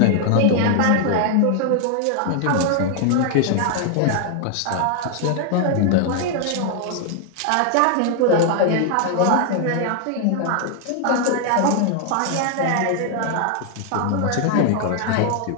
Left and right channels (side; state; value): both; different; correlation 0.00